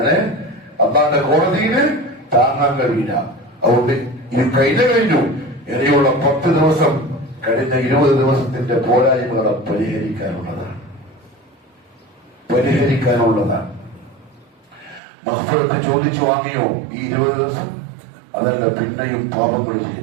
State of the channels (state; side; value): drops out; left; at 15.0 s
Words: അന്നാന്റെ കോടതിയിൽ താങ്ങാൻ കഴിയില്ല. അതുകൊണ്ട് ഇത് കഴിഞ്ഞു. ഇനിയുള്ള 10 ദിവസം കഴിഞ്ഞ 20 ദിവസത്തിന്റെ പോരായ്മകളെ പരിഹരിക്കാനുള്ളതാണ്. മഗ്ഫിറത്ത് ചോദിച്ചു വാങ്ങിയോ ഈ 20 ദിവസം? അതല്ല, പിന്നെയും പാപങ്ങൾ